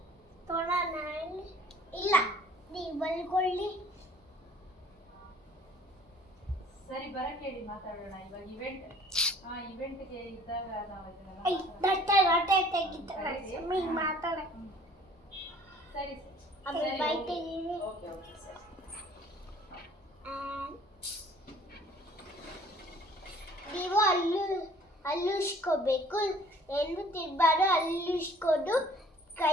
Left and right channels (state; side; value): normal; both; correlation 0.53